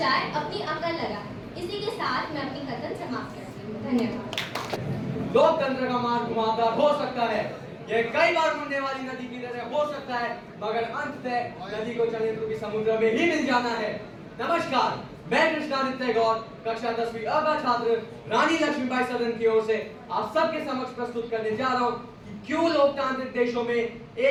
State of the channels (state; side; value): identical; both; correlation 1.00